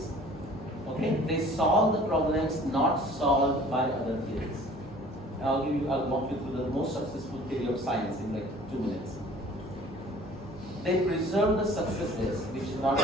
Okay? They solve the problems not solved by other theories. I'll walk you through the most successful theory of science in like 2 minutes. They preserve the successes which is not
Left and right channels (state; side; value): normal; both; correlation 0.49